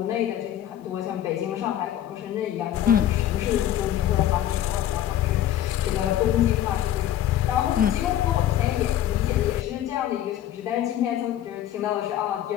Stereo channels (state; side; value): quieter; right; 11.7 dB